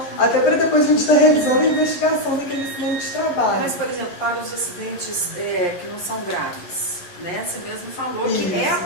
até para depois a gente estar realizando a investigação daquele acidente de trabalho. Mas, por exemplo, para os acidentes que não são graves, né? Você mesmo falou Isso. que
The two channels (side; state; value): right; late; 11 ms